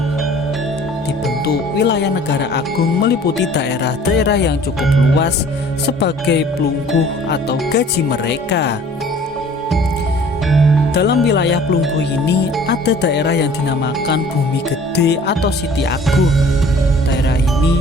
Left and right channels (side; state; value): both; normal; correlation 0.50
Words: Dibentuk wilayah negara agung meliputi daerah-daerah yang cukup luas sebagai pelungguh atau gaji mereka. Dalam wilayah pelungguh ini ada daerah yang dinamakan Bumi Gede atau Siti Agung. Daerah